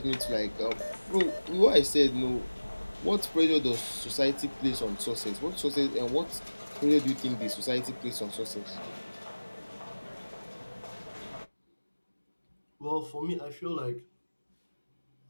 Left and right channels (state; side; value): inverted; both; correlation -1.00